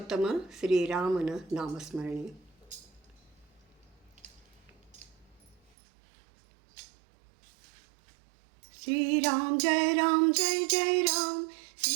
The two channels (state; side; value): drops out; left; at 5.6 s